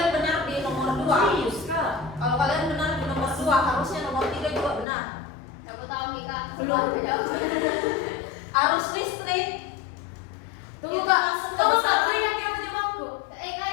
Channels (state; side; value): drops out; right; at 4.9 s